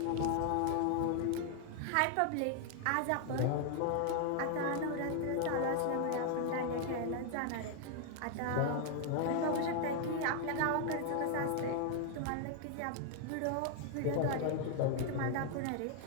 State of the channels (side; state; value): both; different; correlation 0.00